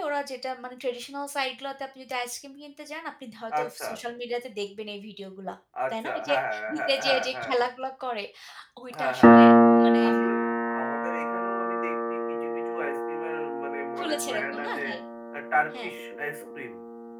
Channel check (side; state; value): both; identical; correlation 1.00